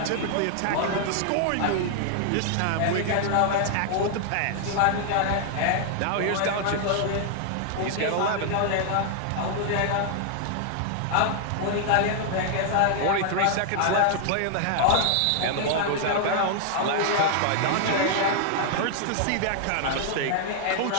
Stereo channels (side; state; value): both; different; correlation 0.00